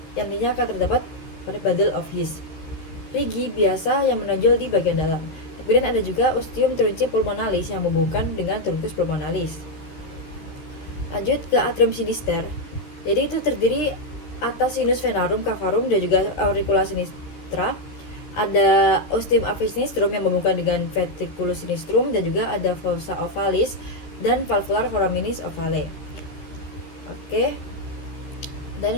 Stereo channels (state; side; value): late; right; 13 ms